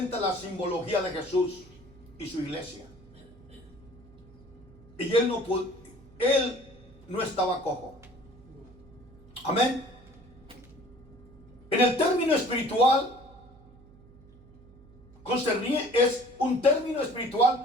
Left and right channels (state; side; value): noise; right; hum, 23 dB below the sound